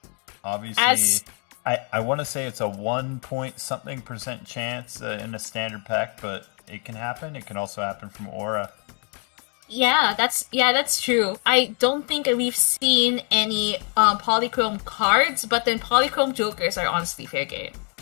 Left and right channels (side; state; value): right; quieter; 38.5 dB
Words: Obviously, I want to say it's a 1 point something % chance in a standard pack, but it can happen. It can also happen from Aura. Yeah, that's true. I don't think we've seen any Polychrome cards, but then Polychrome Jokers are honestly fair game.